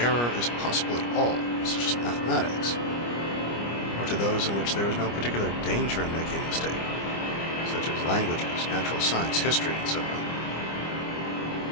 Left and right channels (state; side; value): late; right; 25 ms